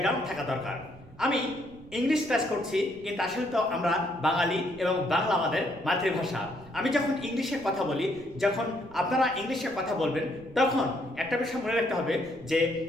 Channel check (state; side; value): noise; right; rumble, 22 dB below the sound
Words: থাকা দরকার। আমি ইংলিশ ক্লাস করছি কিন্তু আসলে তো আমরা বাঙালি এবং বাংলা আমাদের মাতৃভাষা। আমি যখন ইংলিশে কথা বলি, যখন আপনারা ইংলিশে কথা বলবেন, তখন একটা বিষয় মনে রাখতে হবে যে